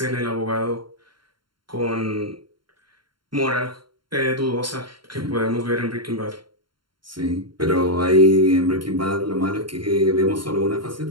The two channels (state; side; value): late; left; 0.72 ms